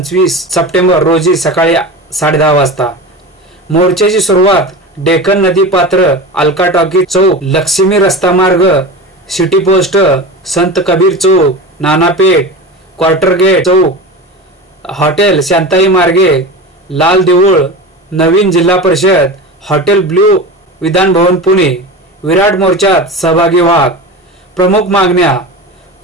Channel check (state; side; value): normal; both; correlation 0.28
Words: सप्टेंबर रोजी सकाळी 10:30 वाजता। मोर्चाची सुरुवात डेक्कन नदीपात्र अलका टॉकी चौक लक्ष्मी रस्ता मार्ग सिटी पोस्ट संत कबीर चौक नानापेठ क्वार्टर गेट चौक हॉटेल शांताई मार्गे लाल देऊळ नवीन जिल्हा परिषद हॉटेल ब्ल्यू विधान भवन पुणे। विराट मोर्चात सहभागी व्हा। प्रमुख मागण्या